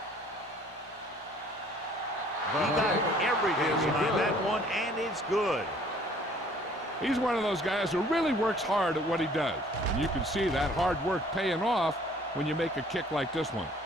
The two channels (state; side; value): normal; both; correlation 0.56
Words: He got everything behind that one, and it's good. He's one of those guys who really works hard at what he does. And you can see that hard work paying off when you make a kick like this one.